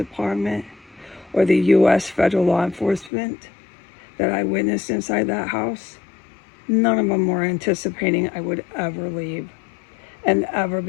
or the U.S. federal law enforcement that I witnessed inside that house, none of them were anticipating I would ever leave and ever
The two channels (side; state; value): right; drops out; at 3.1 s